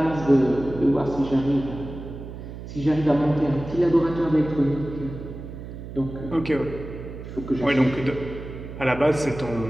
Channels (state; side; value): noise; right; hum, 11 dB below the sound